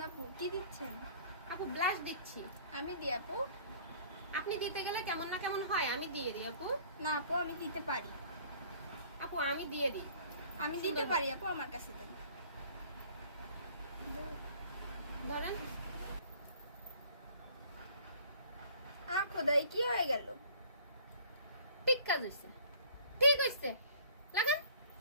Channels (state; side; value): inverted; both; correlation -0.53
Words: আপু, কি দিচ্ছেন? আপু ব্লাশ দিচ্ছি। আমি দিই আপু? আপনি দিতে গেলে কেমন না কেমন হয়, আমি দিয়ে দিই আপু। না আপু, আমি দিতে পারি। আপু আমি দিয়ে দিই। আমি দিতে পারি আপু, আমার কাছে দেন। ধরেন। খোদাই, কি হয়ে গেল? ঠিক কাজ হয়েছে, ঠিক হয়েছে। লাগান,